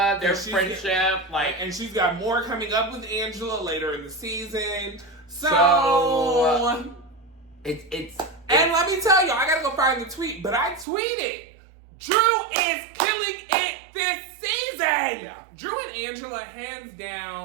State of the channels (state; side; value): drops out; left; at 10.9 s